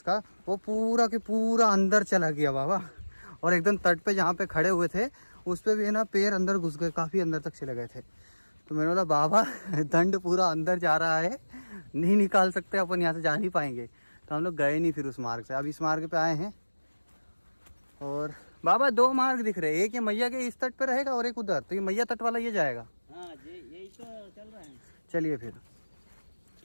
का, वो पूरा के पूरा अंदर चला गया बाबा। और एकदम तट पे जहाँ पे खड़े हुए थे उस पे भी है ना पैर अंदर घुस गए, काफ़ी अंदर तक चले गए थे। तो मैंने बोला बाबा दंड पूरा अंदर जा रहा है, नहीं निकाल सकते अपन, यहाँ से जा नहीं पाएंगे। तो हम लोग गए नहीं फिर उस मार्ग से, अब इस मार्ग पे आए हैं। और बाबा 2 मार्ग दिख रहे हैं, एक ये मैया के इस तट पे रहेगा और एक उधर, तो ये मैया तट वाला ये जाएगा। हाँ यही तो चल रहा है। चलिए फिर।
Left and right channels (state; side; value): inverted; both; correlation -1.00